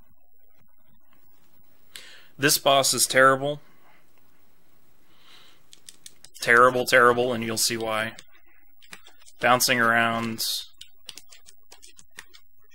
This boss is terrible. Terrible, terrible, and you'll see why. Bouncing around.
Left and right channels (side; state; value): both; identical; correlation 1.00